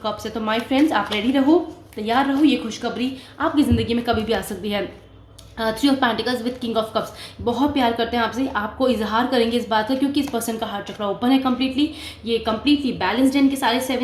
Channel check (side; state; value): both; identical; correlation 1.00